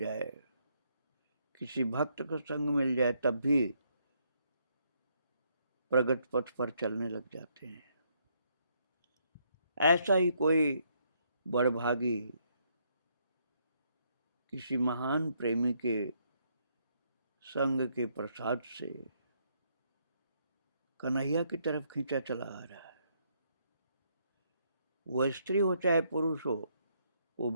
किसी भक्त का संग मिल जाए, तब भी प्रगट पथ पर चलने लग जाते हैं। ऐसा ही कोई बड़भागी किसी महान प्रेमी के संग के प्रसाद से कन्हैया की तरफ खींचा चला आ रहा है। वह स्त्री हो चाहे पुरुष हो, वो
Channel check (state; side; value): inverted; both; correlation -0.73